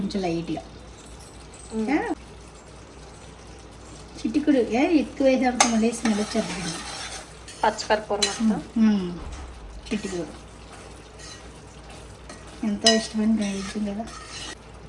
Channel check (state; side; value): identical; both; correlation 1.00